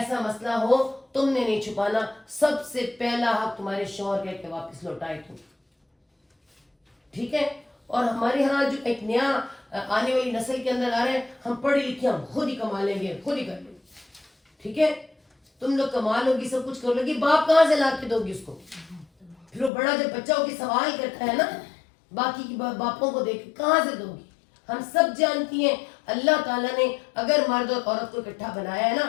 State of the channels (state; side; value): drops out; right; at 19.7 s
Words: مسئلہ ہو تم نے نہیں چھپانا, سب سے پہلا حق تمہارے شوہر کا کہ واپس لوٹائے تم. ٹھیک ہے. اور ہمارے ہاں جو ایک نیا آنے والی نسل کے اندر آ رہے ہیں, ہم پڑھے لکھے ہم خود ہی کما لیں گے, خود ہی کر لیں گے. ٹھیک ہے, تم لوگ کما لو گی, سب کچھ کر لو گی, باپ کہاں سے لا کے دو گی اس کو؟ پھر وہ بڑا جب بچہ ہو کے سوال کرتا ہے نا باقی کی باپوں کو دیکھ کہاں سے دو گی؟ ہم سب جانتی ہیں اللہ تعالیٰ نے اگر مرد اور عورت کو اکٹھا بنایا ہے